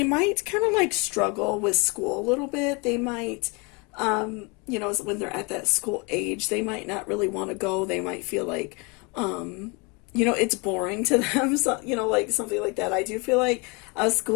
might kind of like struggle with school a little bit. They might, when they're at that school age, they might not really want to go. They might feel like, it's boring to them, so, like something like that. I do feel like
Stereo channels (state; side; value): quieter; right; 29.8 dB